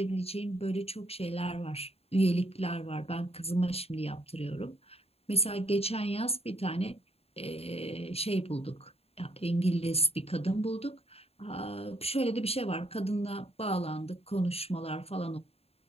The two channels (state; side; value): late; right; 0.29 ms